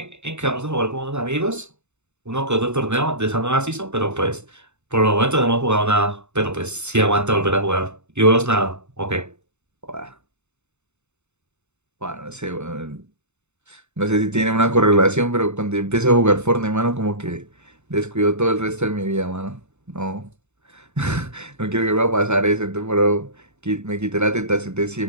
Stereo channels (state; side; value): late; left; 0.82 ms